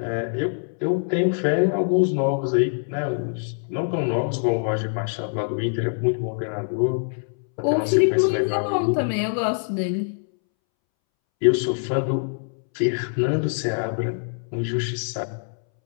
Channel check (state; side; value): silent; right; 63 dB below the other